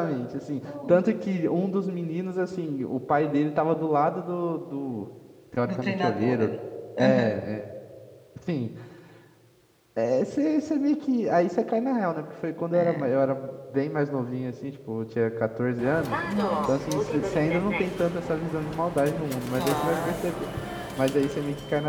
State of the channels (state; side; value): identical; both; correlation 1.00